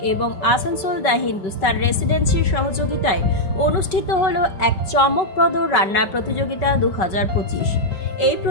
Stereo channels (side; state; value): right; late; 5.2 ms